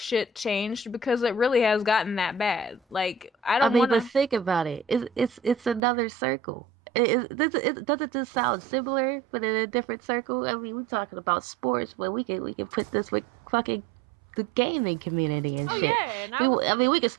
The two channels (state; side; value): drops out; left; at 5.8 s